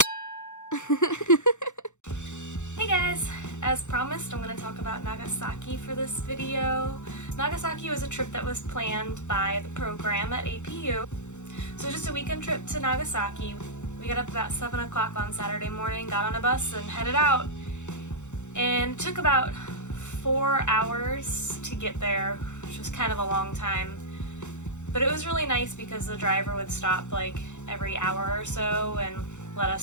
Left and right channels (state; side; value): late; right; 0.84 ms